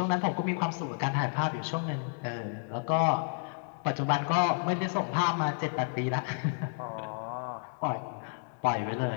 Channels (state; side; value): silent; right; 57 dB below the other